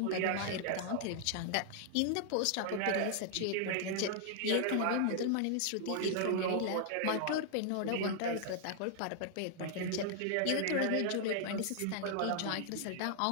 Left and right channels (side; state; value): both; different; correlation -0.01